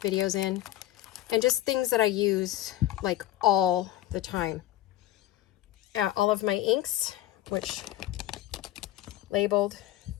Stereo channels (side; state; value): right; quieter; 14.4 dB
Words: videos in, and just things that I use like all the time. All of my inks, which labeled,